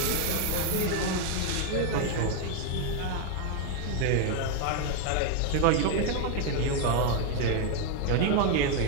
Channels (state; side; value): different; both; correlation 0.01